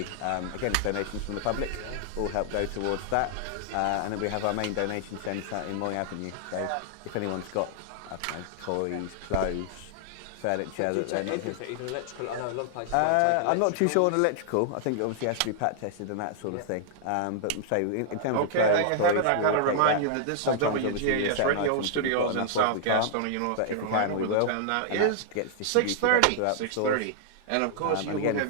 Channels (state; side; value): different; both; correlation -0.01